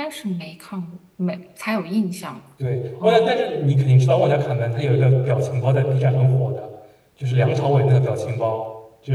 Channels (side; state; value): both; identical; correlation 1.00